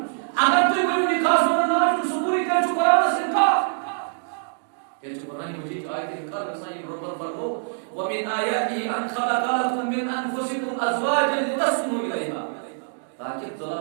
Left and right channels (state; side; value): silent; left; digital silence